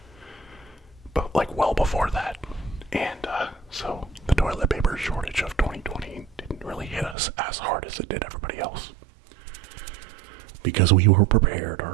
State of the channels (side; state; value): left; drops out; at 7.2 s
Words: but like well before that. And so the toilet paper shortage of 2020 didn't really hit us as hard as it did everybody else. Because we were prepared,